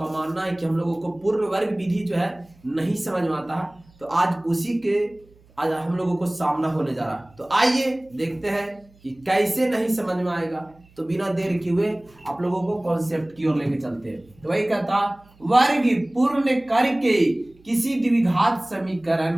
मानना है कि हम लोगों को पूर्ण वर्ग विधि जो है नहीं समझ में आता है, तो आज उसी के आज हम लोगों को सामना होने जा रहा। तो आइए देखते हैं कि कैसे नहीं समझ में आएगा। तो बिना देर किए हुए आप लोगों को कॉन्सेप्ट की ओर लेके चलते हैं। तो वही कहता, वर्ग पूर्ण करके किसी द्विघात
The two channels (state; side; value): noise; right; hum, 29 dB below the sound